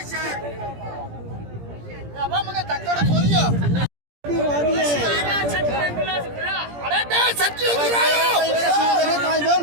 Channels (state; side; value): late; left; 17 ms